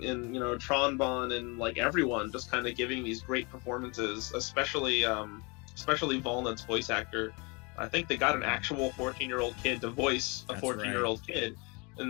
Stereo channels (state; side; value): quieter; right; 29.7 dB